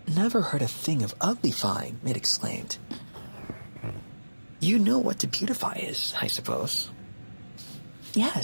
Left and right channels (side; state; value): both; inverted; correlation -1.00